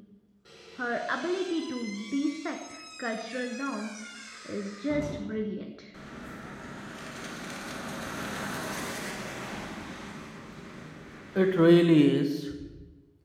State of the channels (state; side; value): identical; both; correlation 1.00